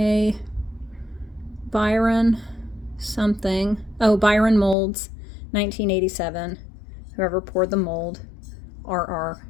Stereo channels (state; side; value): drops out; right; at 4.8 s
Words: Byron something. Oh, Byron Molds, 1987. Whoever poured the mold, RR,